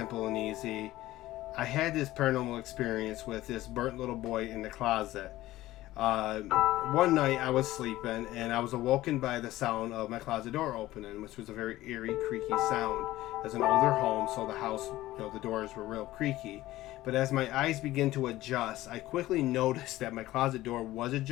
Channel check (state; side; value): quieter; right; 16.3 dB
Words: and easy, I had this paranormal experience with this burnt little boy in the closet. One night I was sleeping and I was awoken by the sound of my closet door opening, which was a very eerie, creaky sound. As an older home, so the house, the doors were real creaky. But as my eyes began to adjust, I quickly noticed that my closet door was